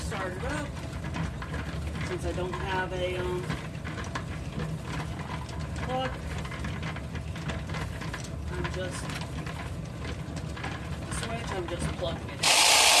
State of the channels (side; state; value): both; identical; correlation 1.00